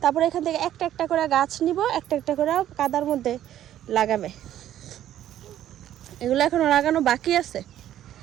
তারপরে এখান থেকে একটা একটা করে গাছ নিব, একটা একটা করে কাদার মধ্যে লাগাবে। এগুলো এখনো লাগানো বাকি আছে।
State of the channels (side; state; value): left; quieter; 11.8 dB